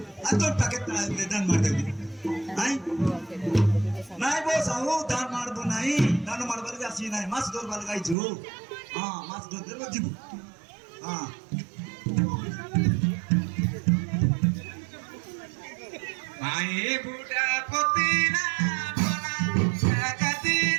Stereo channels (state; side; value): drops out; left; at 8.2 s